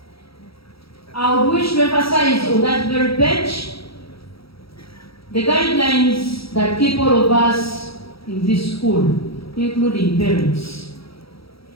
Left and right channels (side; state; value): right; late; 0.76 ms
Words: I would wish to emphasize on that very page the guidelines that keep all of us in this school, including parents.